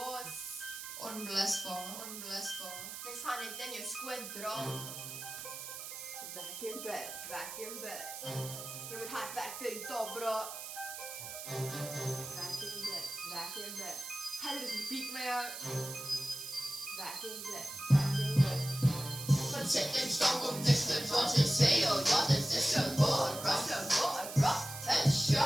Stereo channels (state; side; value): noise; right; hiss, 9 dB below the sound